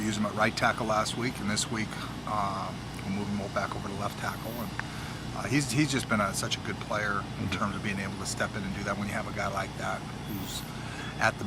used him at right tackle last week, and this week we'll move him back over to left tackle. And he's just been such a good player in terms of being able to step in and do that. When you have a guy like that who's at the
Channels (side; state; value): both; identical; correlation 1.00